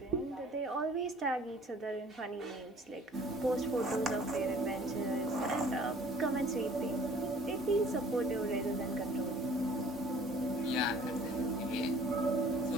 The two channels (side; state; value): both; normal; correlation 0.52